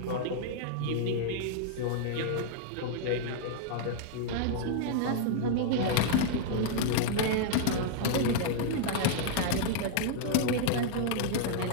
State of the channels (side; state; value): both; different; correlation -0.01